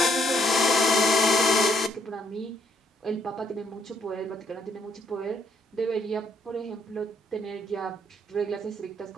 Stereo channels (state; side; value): normal; both; correlation 0.69